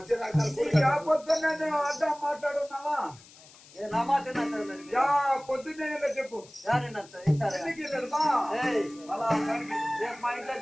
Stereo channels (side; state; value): left; noise; hiss, 23 dB below the sound